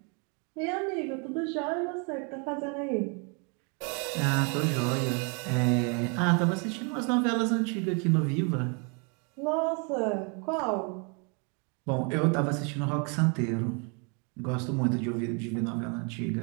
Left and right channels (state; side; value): quieter; left; 35.2 dB